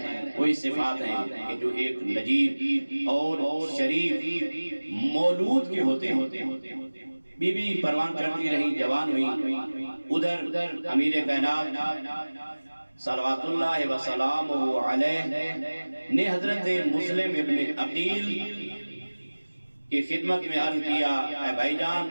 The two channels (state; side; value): inverted; both; correlation -1.00